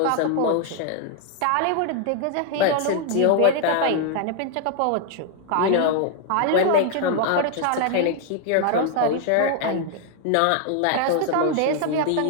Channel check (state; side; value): different; both; correlation 0.00